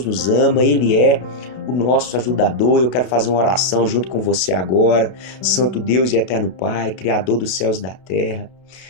nos ama, Ele é o nosso ajudador. Eu quero fazer uma oração junto com você agora. Santo Deus e eterno Pai, Criador dos céus e da terra,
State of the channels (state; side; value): late; right; 32 ms